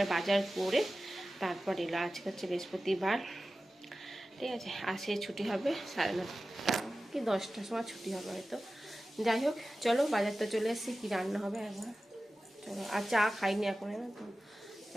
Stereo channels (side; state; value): both; normal; correlation 0.95